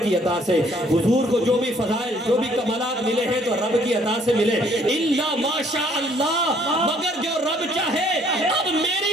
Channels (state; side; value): normal; both; correlation 0.62